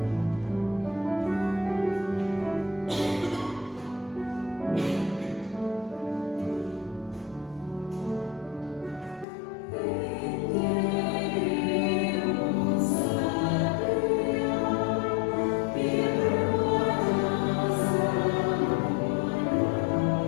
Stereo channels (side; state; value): right; drops out; at 9.2 s